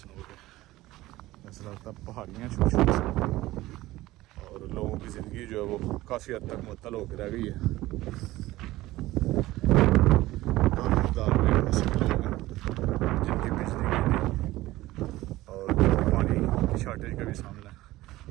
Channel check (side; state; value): left; quieter; 17.4 dB